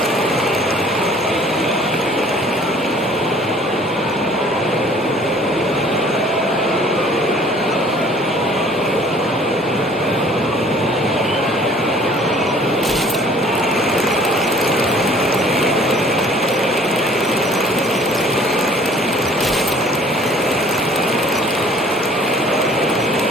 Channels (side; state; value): both; normal; correlation 0.54